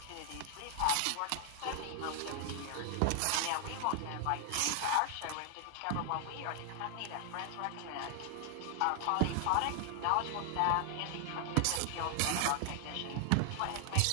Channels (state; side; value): different; both; correlation 0.00